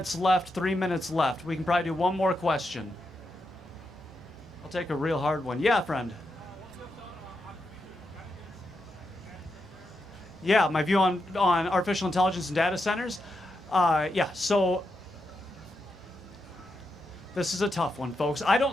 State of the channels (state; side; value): normal; both; correlation 0.85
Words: left, 3 minutes left. We can probably do one more question. I'll take a real hard one. Yeah, friend. Yeah, my view on artificial intelligence and data centers. Yeah, so this is a tough one, folks. I